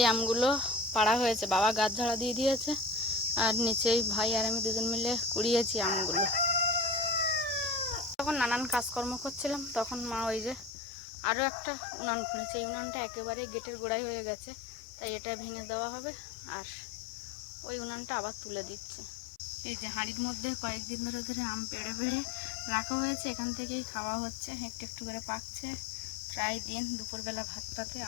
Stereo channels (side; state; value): right; drops out; at 10.8 s